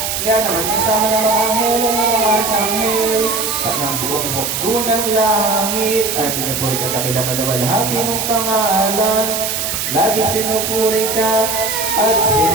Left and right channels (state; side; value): noise; right; hiss, 2 dB below the sound